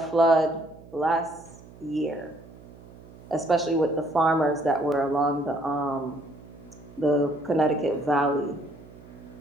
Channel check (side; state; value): right; noise; hum, 20 dB below the sound